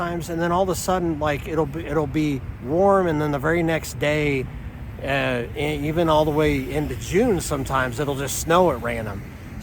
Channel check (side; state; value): both; identical; correlation 1.00